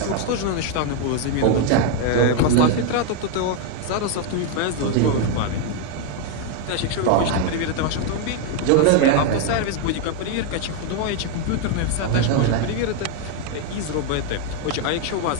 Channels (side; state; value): both; different; correlation 0.01